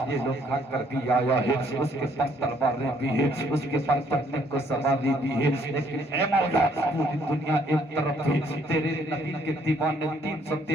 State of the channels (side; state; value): both; normal; correlation 0.66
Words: یہ لوگ کھا کر بھی آیا ہے، اس کے پاس تلواریں بھی ہے، اس کے پاس چڑھنے کو سواری بھی ہے، لیکن اے مولا پوری دنیا ایک طرف ہے، تیرے نبی کے دیوانے